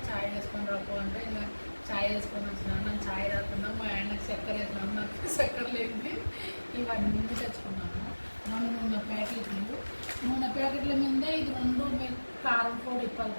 ఛాయ్ వేసుకొని రాకు అంటే ఇంకా ఛాయ్ వేసుకొని వచ్చినాను. నాకు ఛాయ్ రాకుండా మా ఆయనకు చక్కెర వేసినాము, నాకు చక్కెర లేని ఇవన్నీ తెచ్చుకున్నాము. నూనె ప్యాకెట్లు, నూనె ప్యాకెట్ల మీద ఇది 2 కారం పొడి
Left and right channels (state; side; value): inverted; both; correlation -1.00